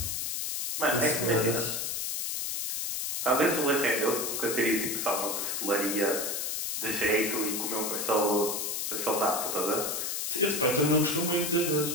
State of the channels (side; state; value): left; noise; hiss, 2 dB below the sound